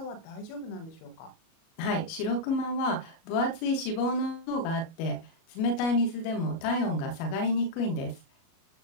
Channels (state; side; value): late; right; 37 ms